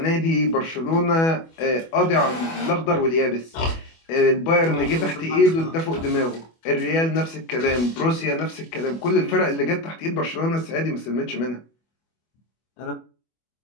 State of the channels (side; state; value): right; late; 25 ms